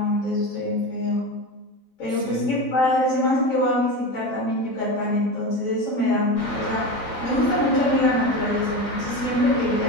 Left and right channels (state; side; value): late; right; 4.0 ms